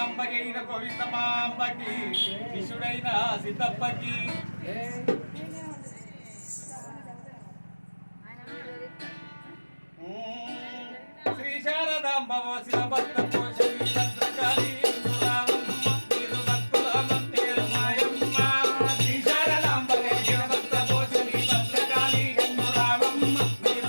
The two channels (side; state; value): both; inverted; correlation -1.00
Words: గోవిందమాంబకి శిష్యుడైన సిద్ధప్పకి శ్రీ శారదాంబ శివభక్త పోషణి భద్రకాళి